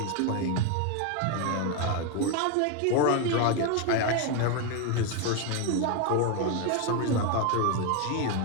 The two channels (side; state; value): both; different; correlation 0.01